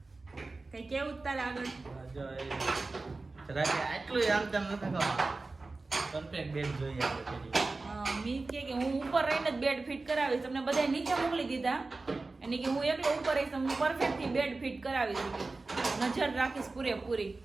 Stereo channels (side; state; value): left; quieter; 3.5 dB